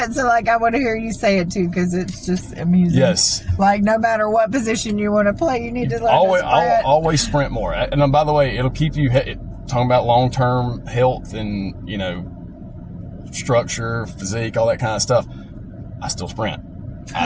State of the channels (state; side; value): identical; both; correlation 1.00